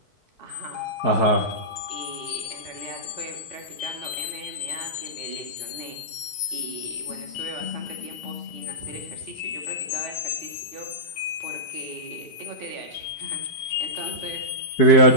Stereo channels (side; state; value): right; late; 5.2 ms